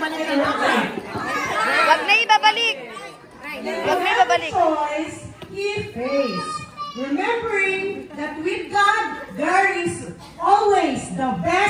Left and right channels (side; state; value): both; identical; correlation 1.00